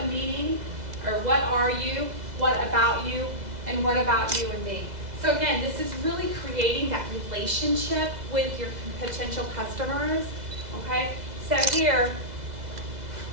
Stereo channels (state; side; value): late; left; 2.0 ms